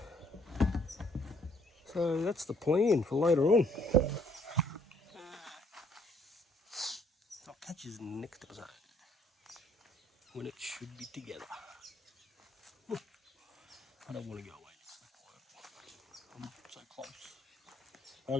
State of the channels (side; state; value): both; normal; correlation 0.64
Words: So that's the plan for later on. I'll catch you in the next episode when it should be together. I don't want to go away. I'm so close.